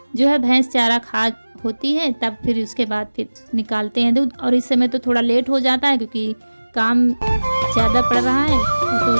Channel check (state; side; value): inverted; both; correlation -1.00